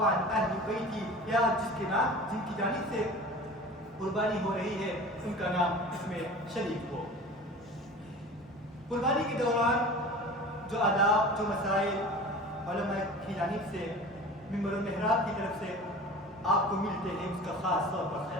اہل بیتی، یا جن کی جانب سے قربانی ہو رہی ہے ان کا نام اس میں شریک ہو۔ قربانی کے دوران جو آداب، جو مسائل علماء کی جانب سے ممبر و محراب کی طرف سے آپ کو ملتے ہیں، اس کا خاص طور پر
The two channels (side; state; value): both; normal; correlation 0.38